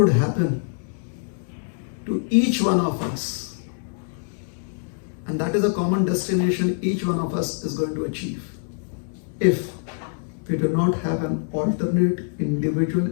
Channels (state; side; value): silent; right; digital silence